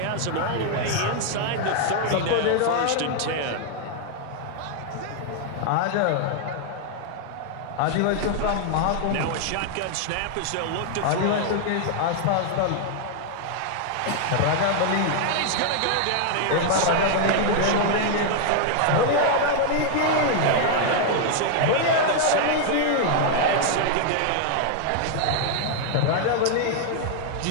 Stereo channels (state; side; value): different; both; correlation 0.00